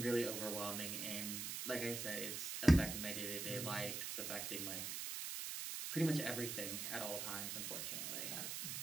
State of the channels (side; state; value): right; noise; hiss, 3 dB below the sound